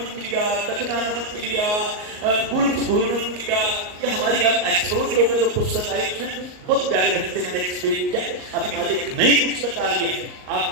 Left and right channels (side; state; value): left; late; 38 ms